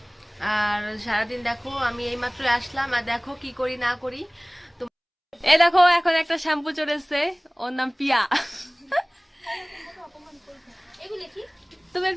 আর সারাদিন দেখো আমি এইমাত্র আসলাম, আর দেখো কি করি না করি। তো এই দেখো এখন একটা শ্যাম্পু চলে এসছে, ওর নাম পিয়া। তুমি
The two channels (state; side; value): identical; both; correlation 1.00